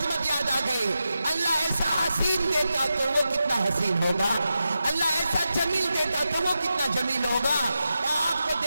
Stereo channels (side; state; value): both; inverted; correlation -0.90